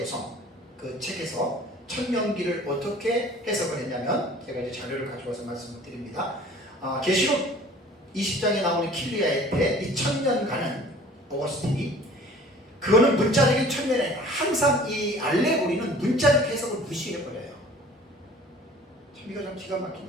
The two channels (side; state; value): both; normal; correlation 0.48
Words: 그 책에서 천년기를 어떻게 해석을 했냐면, 제가 이제 자료를 가져와서 말씀을 드립니다. 계시록 20장에 나오는 킬리아의 때 이 천년간은 어거스틴이 그거는 문자적인 천년이 아니라 항상 이 알레고리는 문자적 해석을 무시해버려요. 참 이거 참 기가 막힌